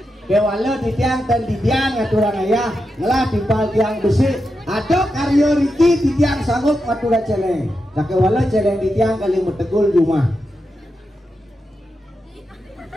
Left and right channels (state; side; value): normal; both; correlation 0.87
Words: Kewala di tiang dan di tiang ngaturang ayah ngelah timpal tiang besi. Ada karyo Riki di tiang sanggup ngatura celeng. Nah kewala celeng di tiang kali metegul rumah.